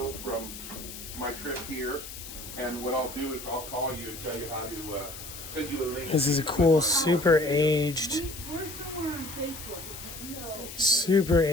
from my trip here, and what I'll do is I'll call you and tell you how to send you a link. This is a cool, super aged, We're somewhere on Facebook. super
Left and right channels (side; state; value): left; noise; hiss, 11 dB below the sound